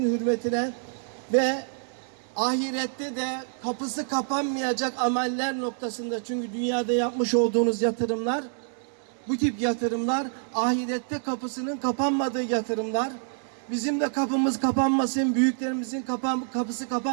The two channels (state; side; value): silent; left; 60 dB below the other